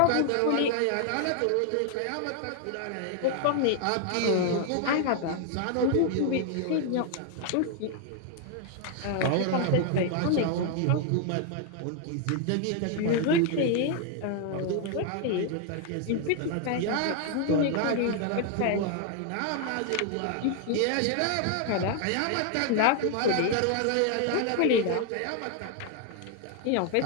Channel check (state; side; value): different; both; correlation 0.00